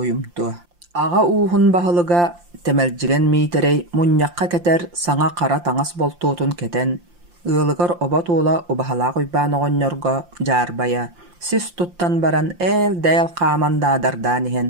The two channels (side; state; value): left; late; 5.7 ms